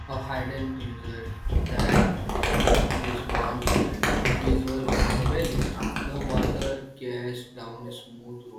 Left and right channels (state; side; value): identical; both; correlation 1.00